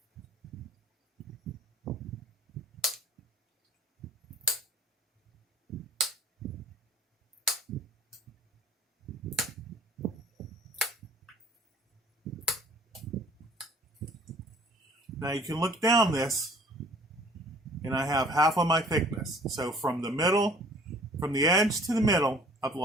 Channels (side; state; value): both; normal; correlation 0.53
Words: Now you can look down this, and I have half of my thickness. So from the edge to the middle, I've